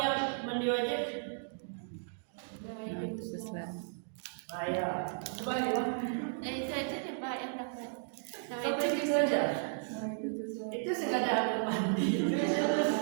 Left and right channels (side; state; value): left; silent; digital silence